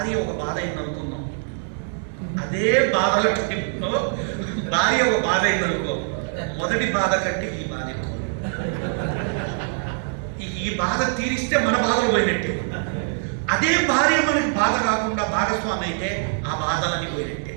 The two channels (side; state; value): left; silent; 63 dB below the other